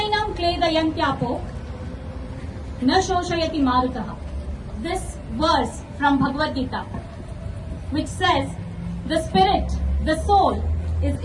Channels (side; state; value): both; identical; correlation 1.00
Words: क्लेदयन्त्यापो न शोषयति मारुतः. This verse from Bhagavad Gita, which says the spirit, the soul is